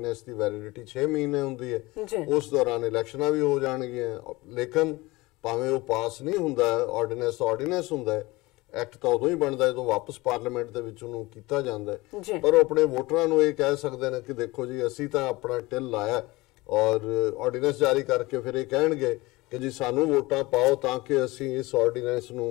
ਦੀ ਵੈਲਿਡਿਟੀ 6 ਮਹੀਨੇ ਹੁੰਦੀ ਹੈ। ਉਸ ਦੌਰਾਨ ਇਲੈਕਸ਼ਨਾਂ ਵੀ ਹੋ ਜਾਣਗੀਆਂ, ਲੇਕਿਨ ਭਾਵੇਂ ਉਹ ਪਾਸ ਨਹੀਂ ਹੁੰਦਾ ਆਰਡੀਨੈਂਸ ਹੁੰਦਾ ਹੈ, ਐਕਟ ਤਾਂ ਉਦੋਂ ਹੀ ਬਣਦਾ ਜਦੋਂ ਵਾਪਸ ਪਾਰਲੀਮੈਂਟ ਦੇ ਵਿੱਚ ਉਹਨੂੰ ਕੀਤਾ ਜਾਂਦਾ ਹੈ। ਪਰ ਉਹ ਆਪਣੇ ਵੋਟਰਾਂ ਨੂੰ ਇਹ ਕਹਿ ਸਕਦੇ ਨੇ ਕਿ ਦੇਖੋ ਜੀ ਅਸੀਂ ਤਾਂ ਆਪਣਾ ਟਿਲ ਲਾਇਆ, ਔਰ ਆਰਡੀਨੈਂਸ ਜਾਰੀ ਕਰਕੇ ਫਿਰ ਇਹ ਕਹਿਣਗੇ ਕਿ ਜੀ ਸਾਨੂੰ ਵੋਟਾਂ ਪਾਓ ਤਾਂ ਕਿ ਅਸੀਂ ਇਸ ਆਰਡੀਨੈਂਸ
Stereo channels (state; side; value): quieter; right; 21.4 dB